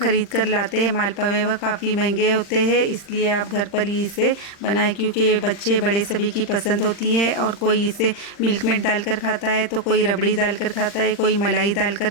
कर लाते हैं मालपुए वह काफ़ी महंगे होते हैं, इसलिए आप घर पर ही इसे बनाएं, क्योंकि ये बच्चे बड़े सभी की पसंद होती है। और कोई इसे मिल्क मेड डालकर खाता है, तो कोई रबड़ी डालकर खाता है, कोई मलाई डालकर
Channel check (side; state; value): right; late; 40 ms